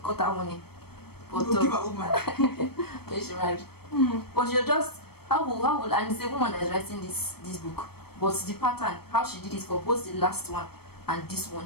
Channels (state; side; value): late; right; 0.96 ms